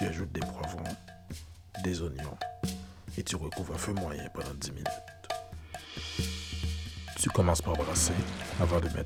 ajoutes des poivrons, des oignons et tu recouvres à feu moyen pendant 10 minutes. Tu commences par brasser avant de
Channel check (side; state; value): both; identical; correlation 1.00